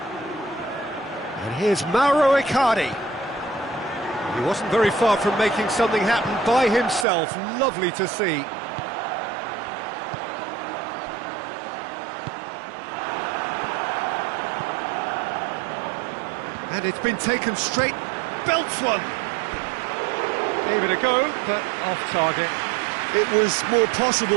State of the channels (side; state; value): left; drops out; at 7.1 s